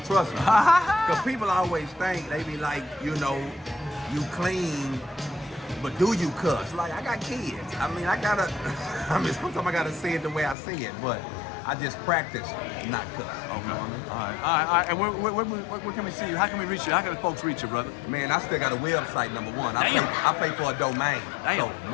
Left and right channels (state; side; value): drops out; right; at 10.6 s